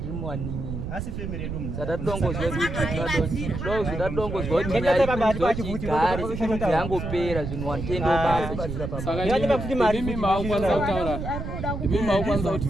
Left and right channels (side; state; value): right; noise; rumble, 6 dB below the sound